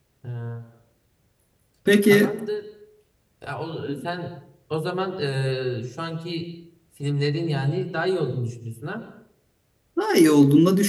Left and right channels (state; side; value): identical; both; correlation 1.00